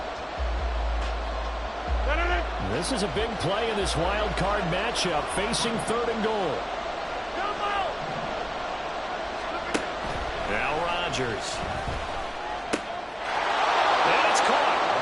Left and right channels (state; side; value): identical; both; correlation 1.00